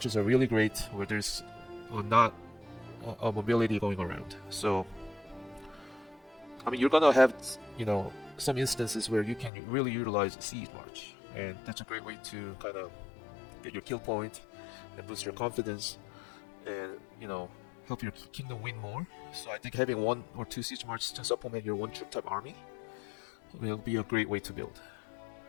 are really great where there's not a mobility going around. So, you're gonna have, some instances where you can really utilize a siege march, and that's a great way to kind of get your kill point and boost your confidence, and help your kingdom win more. So I think having 1 or 2 siege marches to supplement your one troop type army will be a great way to build.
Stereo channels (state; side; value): drops out; right; at 9.5 s